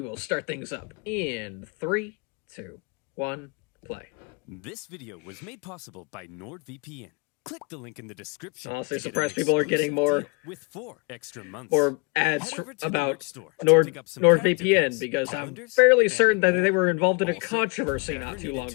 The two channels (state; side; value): quieter; right; 29.0 dB